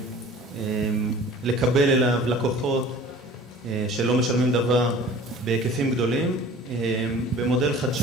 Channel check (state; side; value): normal; both; correlation 0.45